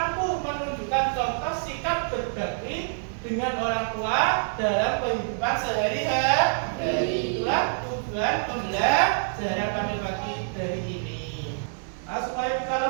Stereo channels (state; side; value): silent; left; 61 dB below the other